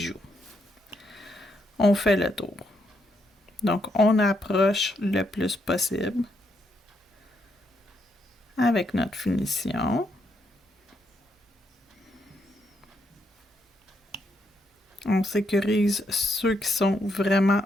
On fait le tour. Donc, on approche le plus possible avec notre finition. On sécurise ceux qui sont vraiment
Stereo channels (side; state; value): both; normal; correlation 0.77